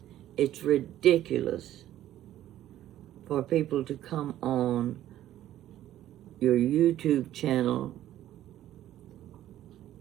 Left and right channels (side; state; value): left; quieter; 12.9 dB